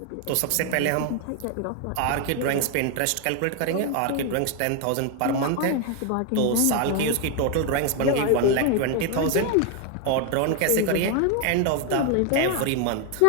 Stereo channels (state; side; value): different; both; correlation 0.01